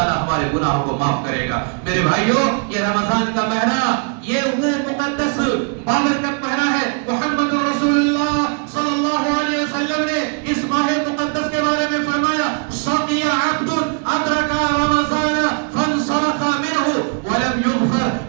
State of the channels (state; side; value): quieter; left; 37.2 dB